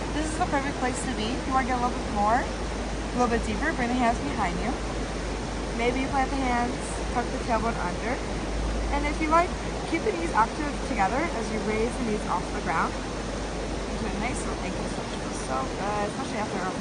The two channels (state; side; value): identical; both; correlation 1.00